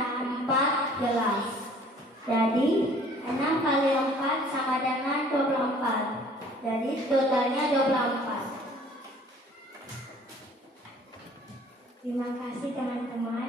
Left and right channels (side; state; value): both; normal; correlation 0.53